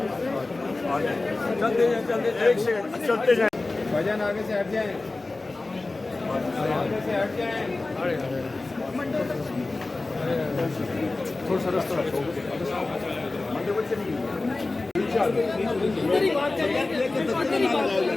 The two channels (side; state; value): right; quieter; 3.2 dB